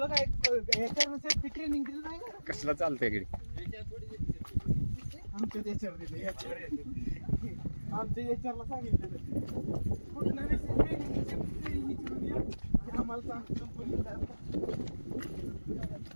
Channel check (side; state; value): both; inverted; correlation -1.00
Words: काय ट्रेनिंग दिलं नाही ना? कसला चालतंय इकडे. आमच्या याच्यावरला सांगितलं कुठलं आम्हाला सांग कंपनीला.